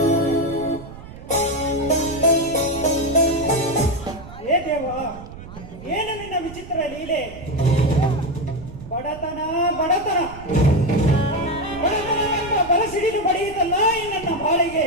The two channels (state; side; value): noise; right; rumble, 15 dB below the sound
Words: ಏ ದೇವ, ಏನು ನಿನ್ನ ವಿಚಿತ್ರ ಲೀಲೆ? ಬಡತನ ಬಡತನ ಬಡತನವೆಂಬ ಬಲಸಿಡಿದು ಬಡಿಯುತ್ತಲ್ಲ ಈ ನನ್ನ ಬಾಳಿಗೆ.